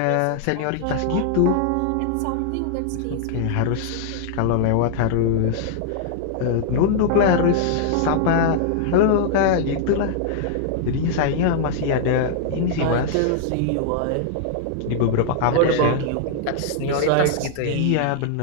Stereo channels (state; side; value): different; both; correlation -0.01